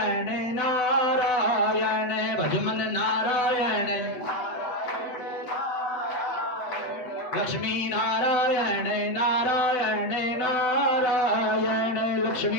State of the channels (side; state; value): right; late; 8.0 ms